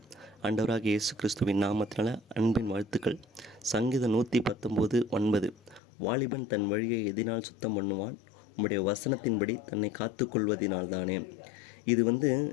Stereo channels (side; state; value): right; drops out; at 5.8 s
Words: ஆண்டவராகிய இயேசு கிறிஸ்துவின் நாமத்தினால அன்பின் வாழ்த்துக்கள். சங்கீதம் 119:9 வாலிபன் தன் வழியை எதினால் சுத்தம் பண்ணுவான், உம்முடைய வசனத்தின்படி தன்னை காத்து கொள்வதினால்தானே. இது